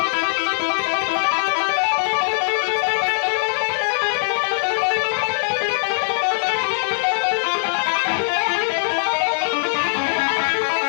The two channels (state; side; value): silent; right; 62 dB below the other